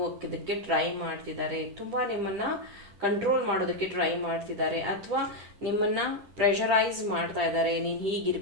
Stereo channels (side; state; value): left; late; 10 ms